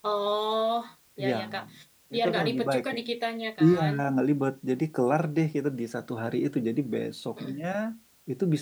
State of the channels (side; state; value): both; identical; correlation 1.00